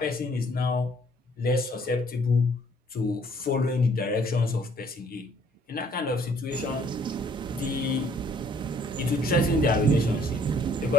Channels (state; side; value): normal; both; correlation 0.62